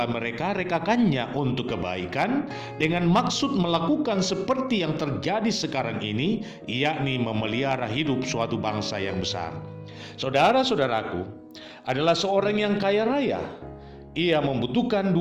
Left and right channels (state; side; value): identical; both; correlation 1.00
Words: mereka-rekakannya untuk kebaikan dengan maksud melakukan seperti yang terjadi sekarang ini, yakni memelihara hidup suatu bangsa yang besar. Saudara-saudaraku, adalah seorang yang kaya raya. Ia membutuhkan